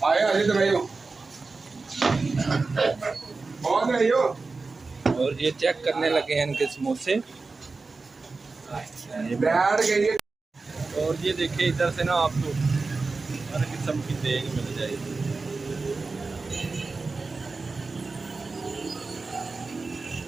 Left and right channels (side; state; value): left; quieter; 3.9 dB